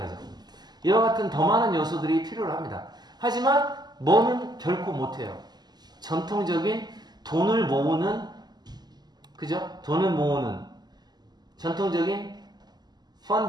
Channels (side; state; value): left; late; 0.20 ms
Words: 이와 같은 더 많은 요소들이 필요로 합니다. 하지만 뭐는 결코 못해요. 전통적인 돈을 모으는, 그죠? 돈을 모으는 전통적인